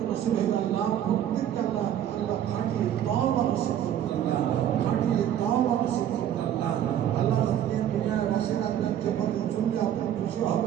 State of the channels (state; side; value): quieter; left; 10.6 dB